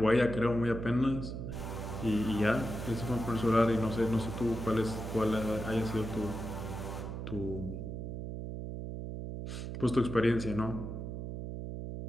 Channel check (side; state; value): right; noise; hum, 6 dB below the sound